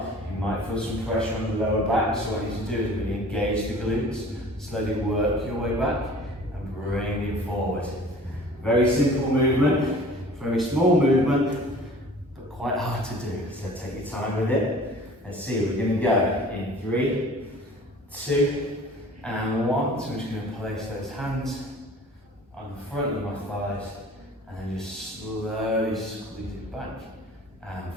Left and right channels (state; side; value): normal; both; correlation 0.47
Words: You might feel some pressure on the lower back, so what I need to do is really engage the glutes, slowly work your way back and bring it forward. Very simple movement, very small movement, but quite hard to do, so take your time with it. Let's see, we're going to go in 3, 2, and 1. So I'm just going to place those hands on the front of my thighs and then just slowly squeeze it back and